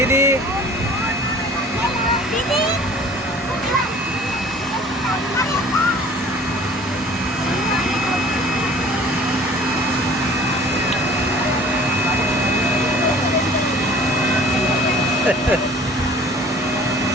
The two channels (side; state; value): both; normal; correlation 0.49